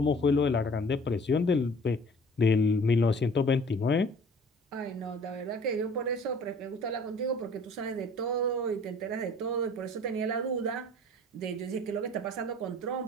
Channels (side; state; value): both; normal; correlation 0.49